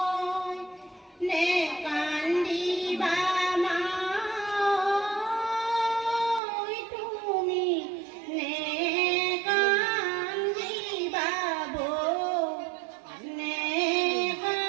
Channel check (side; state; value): left; drops out; at 6.4 s